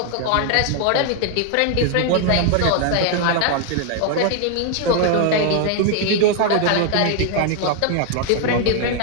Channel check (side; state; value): both; different; correlation 0.00